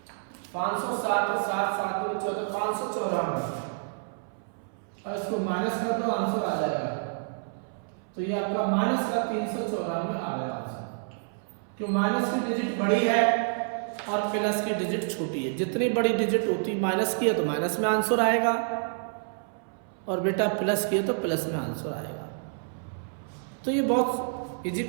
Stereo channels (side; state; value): left; silent; 59 dB below the other